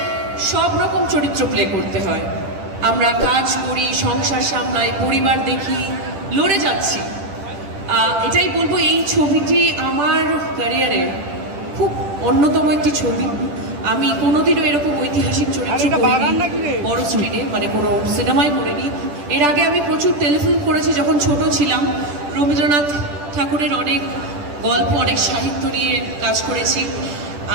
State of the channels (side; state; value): left; late; 10 ms